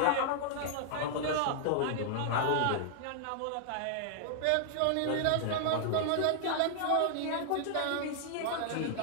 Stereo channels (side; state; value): both; different; correlation -0.01